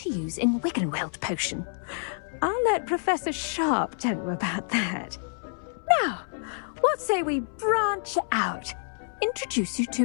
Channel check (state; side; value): silent; right; 60 dB below the other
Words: use in Wiggenweld potion. I'll let Professor Sharp tell you about that. Now, what say we branch out? Introduce you